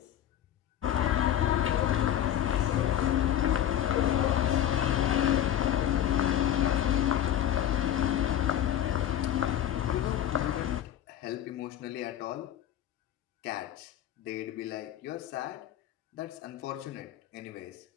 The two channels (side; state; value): right; quieter; 11.0 dB